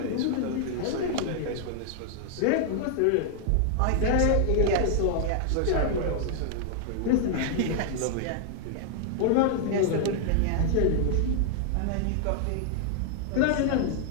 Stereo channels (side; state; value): both; different; correlation 0.00